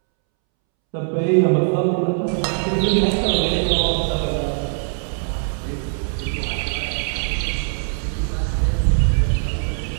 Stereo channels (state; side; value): silent; left; 65 dB below the other